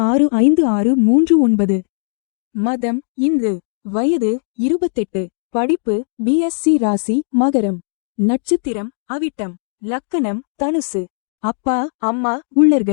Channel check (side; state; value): right; silent; digital silence